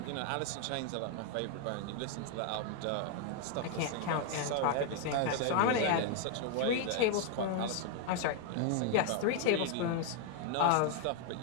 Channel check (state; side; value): different; both; correlation 0.00